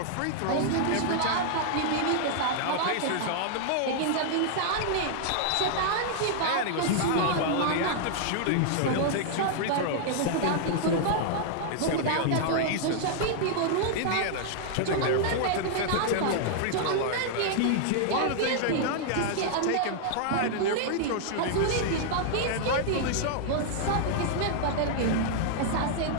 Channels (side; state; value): both; different; correlation -0.01